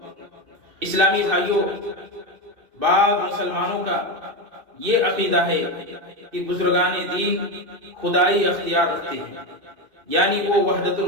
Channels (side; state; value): left; late; 2.6 ms